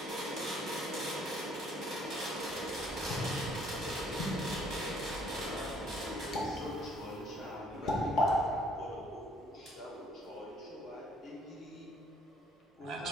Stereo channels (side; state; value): both; normal; correlation 0.62